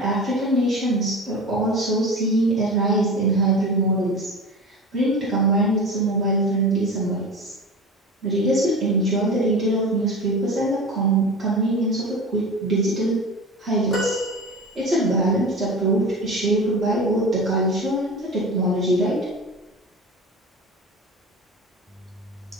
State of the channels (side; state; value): both; normal; correlation 0.32